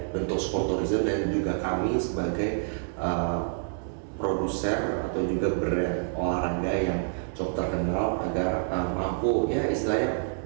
bentuk sport tourism, dan juga kami sebagai produser atau juga brand olahraga yang cukup terkenal agar mampu ya istilahnya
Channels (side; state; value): left; silent; digital silence